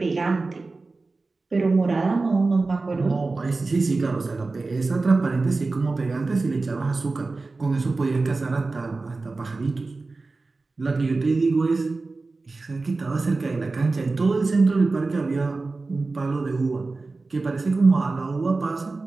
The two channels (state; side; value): quieter; left; 3.6 dB